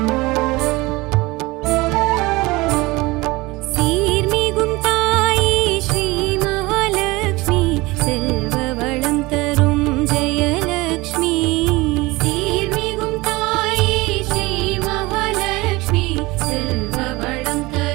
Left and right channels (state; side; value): quieter; left; 22.0 dB